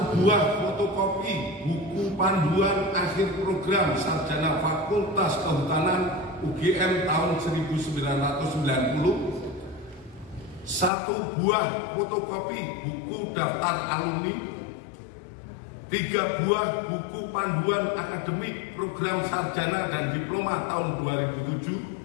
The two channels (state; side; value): drops out; right; at 10.9 s